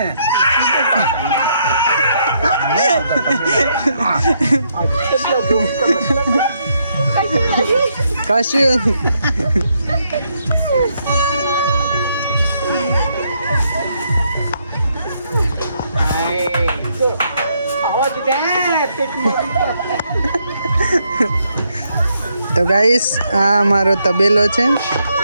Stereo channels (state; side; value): inverted; both; correlation -0.75